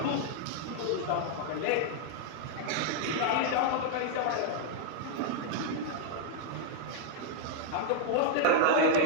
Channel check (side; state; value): both; different; correlation -0.01